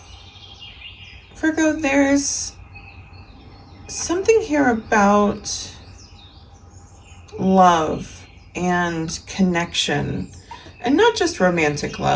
Virgo, there's something here about love and connection, and not just romantic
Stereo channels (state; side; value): identical; both; correlation 1.00